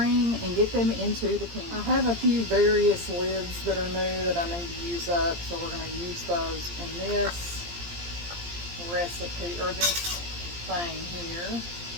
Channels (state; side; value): late; left; 17 ms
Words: and get them into the can. I have a few various lids that are new that I need to use up, so we're going to use those in this recipe, or this thing here.